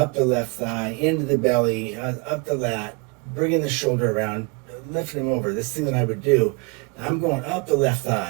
the left thigh, into the belly, up the lat, bringing the shoulder around, lifting them over, this thing that I would do, I'm going up the left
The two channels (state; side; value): quieter; left; 30.8 dB